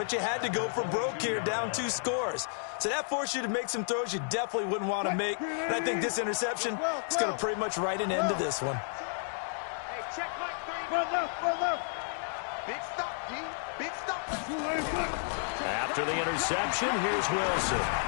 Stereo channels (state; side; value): silent; right; digital silence